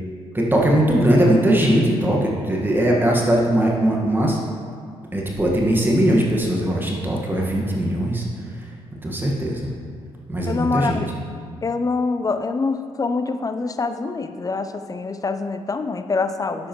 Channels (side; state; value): both; normal; correlation 0.79